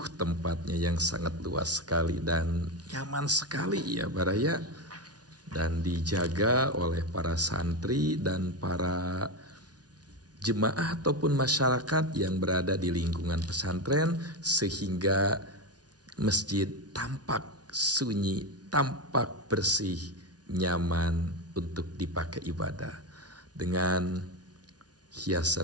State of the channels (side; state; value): left; late; 0.69 ms